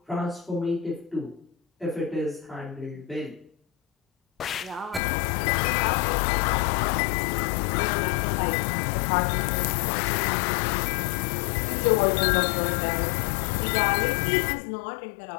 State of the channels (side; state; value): right; drops out; at 5.0 s